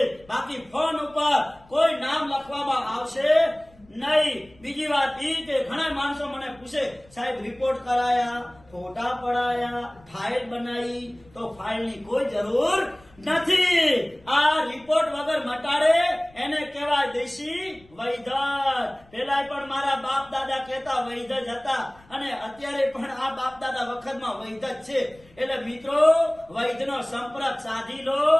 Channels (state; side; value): noise; left; rumble, 28 dB below the sound